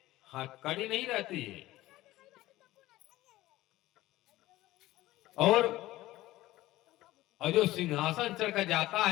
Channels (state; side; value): quieter; right; 16.6 dB